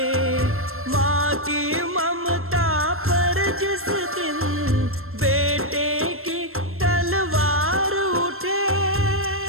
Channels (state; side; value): late; left; 0.62 ms